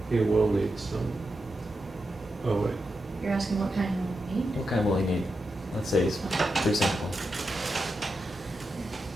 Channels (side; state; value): both; normal; correlation 0.88